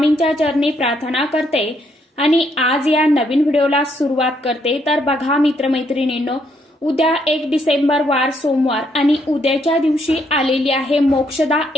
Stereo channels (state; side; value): normal; both; correlation 0.73